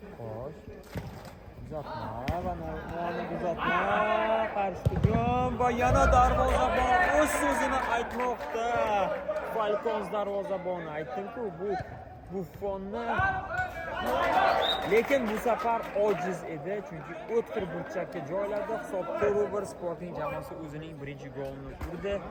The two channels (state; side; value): identical; both; correlation 1.00